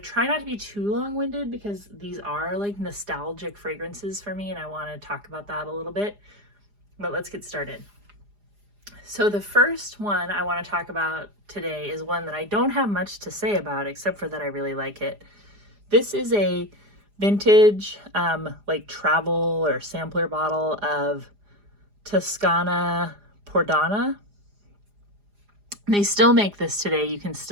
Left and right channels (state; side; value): late; left; 4.9 ms